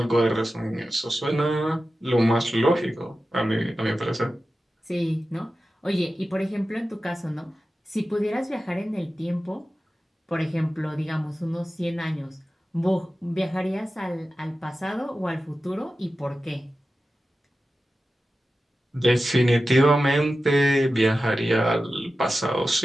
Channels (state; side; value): normal; both; correlation 0.94